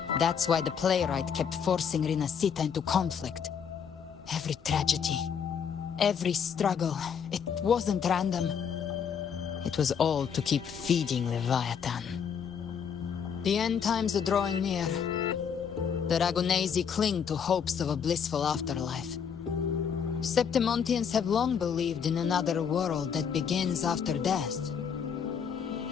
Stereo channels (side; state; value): right; quieter; 7.2 dB